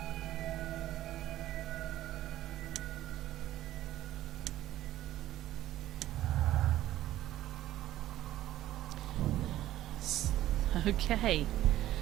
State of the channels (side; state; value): left; quieter; 14.0 dB